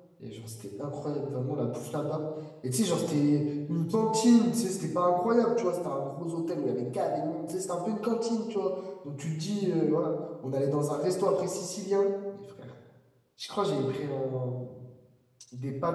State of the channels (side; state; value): both; identical; correlation 1.00